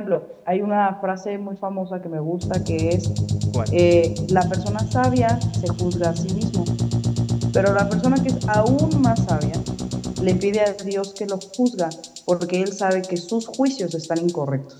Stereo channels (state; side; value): identical; both; correlation 1.00